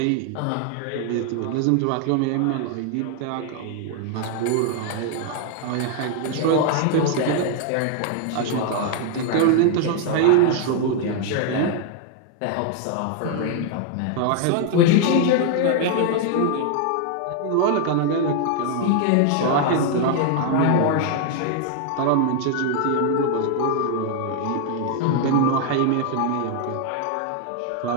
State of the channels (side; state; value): both; different; correlation 0.00